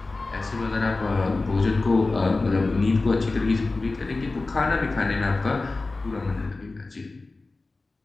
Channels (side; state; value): right; quieter; 3.4 dB